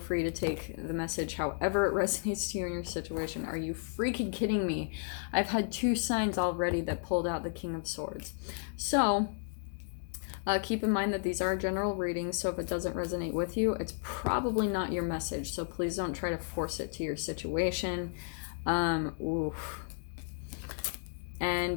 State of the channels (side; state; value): right; silent; digital silence